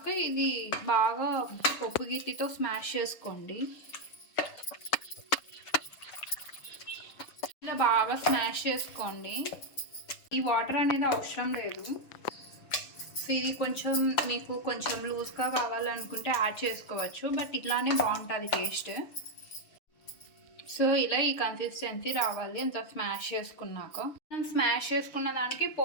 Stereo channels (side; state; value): right; late; 6.5 ms